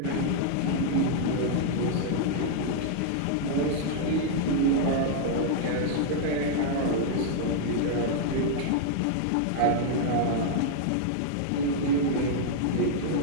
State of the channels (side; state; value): both; different; correlation -0.01